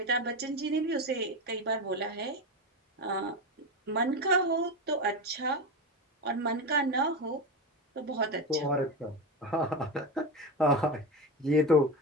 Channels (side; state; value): both; normal; correlation 0.18